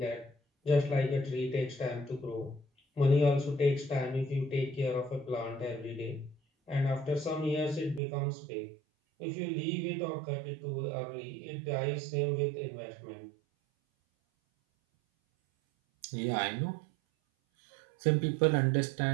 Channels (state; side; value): drops out; left; at 8.0 s